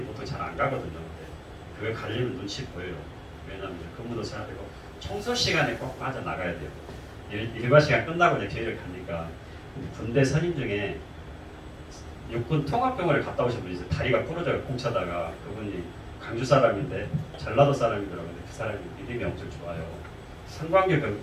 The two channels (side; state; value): both; identical; correlation 1.00